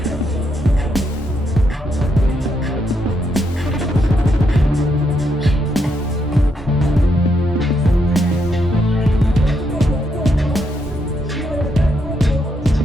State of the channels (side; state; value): both; normal; correlation 0.78